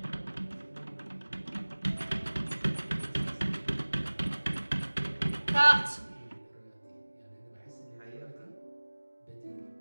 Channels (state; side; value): inverted; both; correlation -1.00